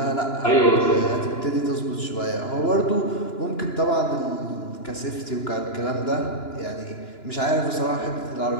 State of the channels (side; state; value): right; late; 2.9 ms